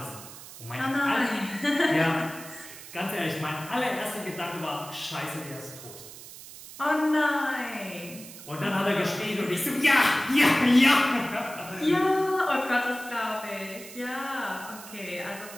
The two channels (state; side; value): noise; right; hiss, 15 dB below the sound